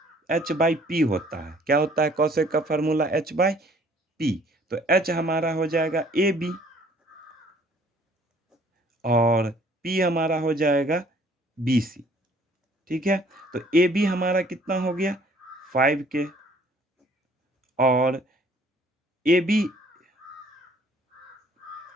p होता है। क्या होता है कॉसेक का फार्मूला h/p। तो h हमारा हो जाएगा AB और p हमारा हो जाएगा BC। ठीक है, तो AB हमारा कितना हो गया 5k और AB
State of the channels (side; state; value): both; normal; correlation 0.58